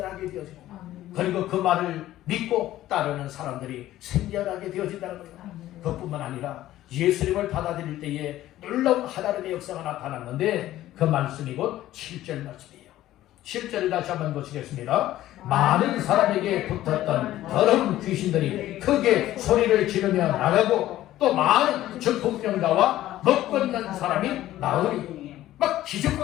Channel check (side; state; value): right; quieter; 14.3 dB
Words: 되어지고, 그리고 그 말을 믿고 따르는 사람들이 생겨나게 되어진다는 거예요. 그뿐만 아니라 예수님을 받아들일 때에 놀라운 하나님의 역사가 나타났는데 그 말씀이 곧 7절 말씀이에요. 7절을 다시 한번 보시겠습니다. 많은 사람에게 붙었던 더러운 귀신들이 크게 소리를 지르며 나가고 또 많은 중풍병자와 먹걷는 사람이 나오니, 막